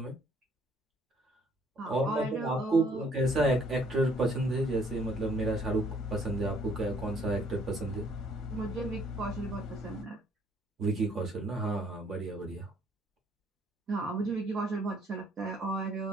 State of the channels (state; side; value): normal; both; correlation 0.63